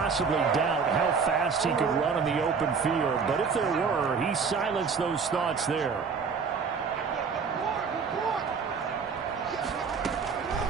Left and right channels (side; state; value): left; quieter; 5.6 dB